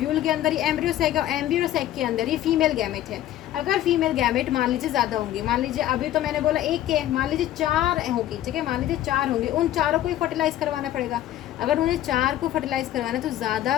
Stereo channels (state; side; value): quieter; right; 13.0 dB